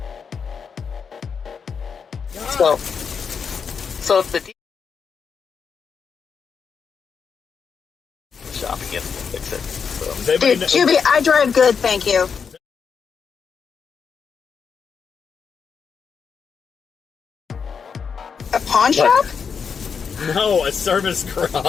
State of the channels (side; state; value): right; quieter; 6.2 dB